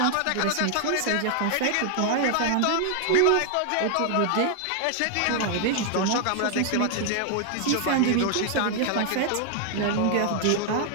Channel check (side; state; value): both; different; correlation 0.00